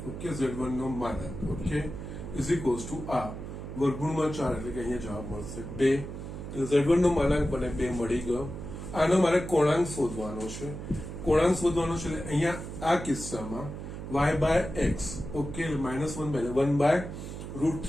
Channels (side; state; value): right; noise; hum, 9 dB below the sound